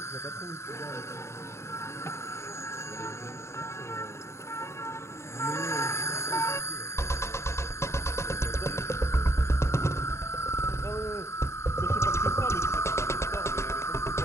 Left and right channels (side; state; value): right; late; 0.13 ms